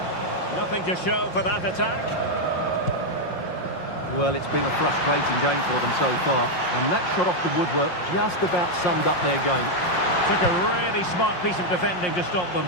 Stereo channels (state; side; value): late; right; 5.6 ms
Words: Nothing to show for that attack. Well, it's been a frustrating game for them so far. And that shot off the woodwork just about summed up their game. Took a really smart piece of defending to stop them.